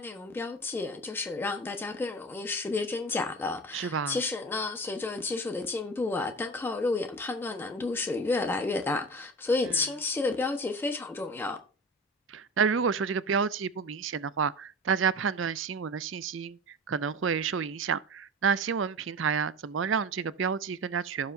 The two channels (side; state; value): both; normal; correlation 0.32